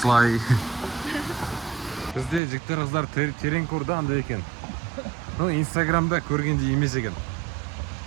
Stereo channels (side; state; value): left; drops out; at 2.4 s